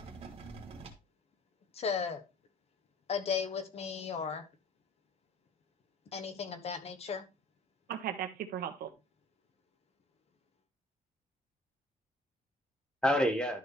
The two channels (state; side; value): normal; both; correlation 0.52